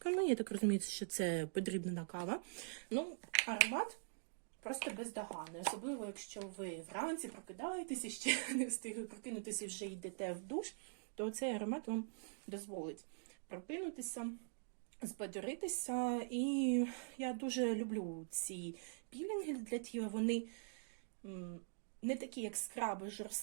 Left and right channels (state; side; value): silent; left; digital silence